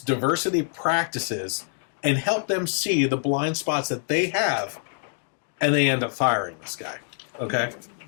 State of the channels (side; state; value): right; silent; 61 dB below the other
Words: practices and help them see the blind spots that they have, and they end up firing this guy. Okay?